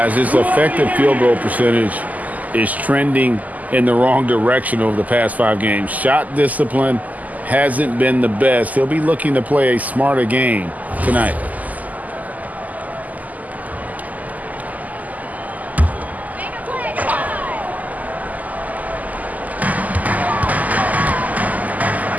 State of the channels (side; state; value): left; late; 0.079 ms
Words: his effective field goal percentage is trending in the wrong direction over the past 5 games. Shot discipline hasn't been the best. He'll be looking to play a smarter game tonight.